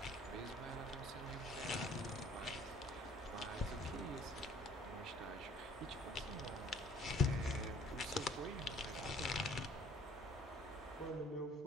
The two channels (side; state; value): both; normal; correlation 0.56